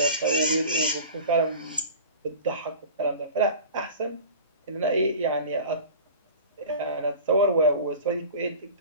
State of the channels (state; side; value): inverted; both; correlation -0.37